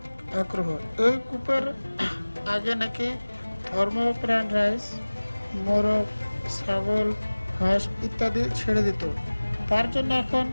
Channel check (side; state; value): both; inverted; correlation -1.00